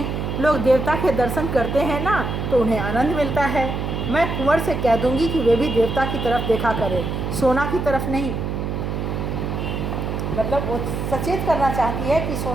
लोग देवता के दर्शन करते हैं ना, तो उन्हें आनंद मिलता है। मैं कुंवर से कह दूंगी कि वे भी देवता की तरफ देखा करे, सोना की तरफ नहीं। मतलब वो सचेत करना चाहती है कि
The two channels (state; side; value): noise; right; hum, 3 dB below the sound